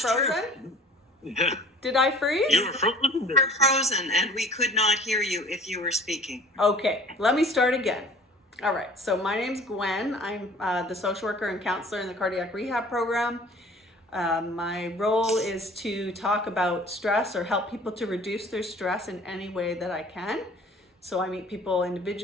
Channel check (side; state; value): both; normal; correlation 0.48